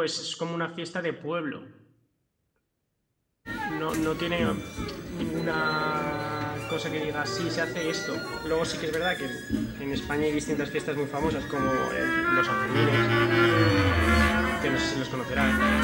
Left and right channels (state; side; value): identical; both; correlation 1.00